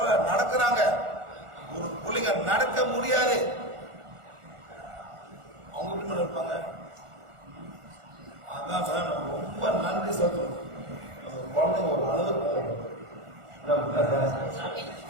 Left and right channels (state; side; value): late; left; 1.4 ms